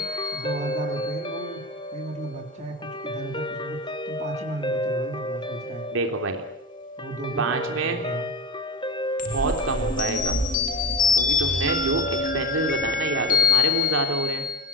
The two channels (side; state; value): both; normal; correlation 0.24